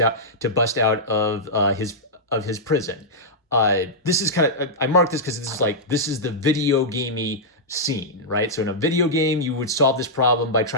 out of his prison. This is kind of, I marked this because this is the video gamey scene, right? So in a video game, you would solve this problem by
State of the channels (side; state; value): both; normal; correlation -0.10